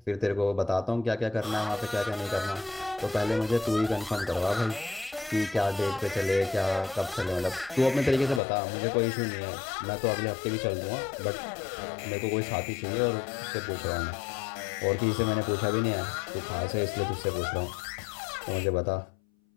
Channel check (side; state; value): right; drops out; at 8.4 s